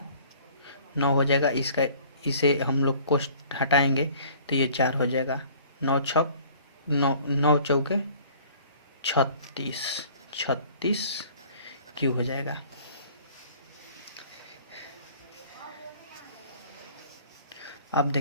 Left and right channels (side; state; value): both; inverted; correlation -0.52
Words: 9 हो जाएगा। इसे हम लोग कोष्ट हटाएंगे तो ये 4 हो जाएगा। 9 चौके 36 क्यू हो जाएगा। अब